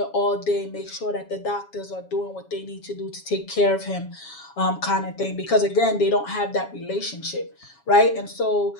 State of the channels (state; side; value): late; right; 7.2 ms